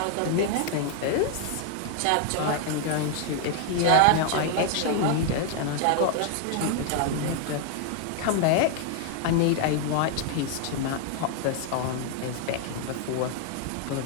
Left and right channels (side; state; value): both; different; correlation 0.00